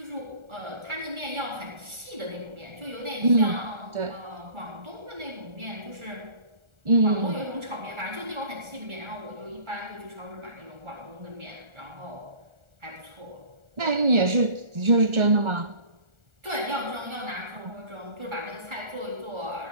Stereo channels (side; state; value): left; late; 1.4 ms